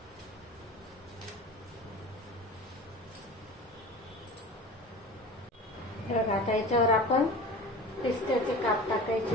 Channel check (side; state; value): both; normal; correlation 0.36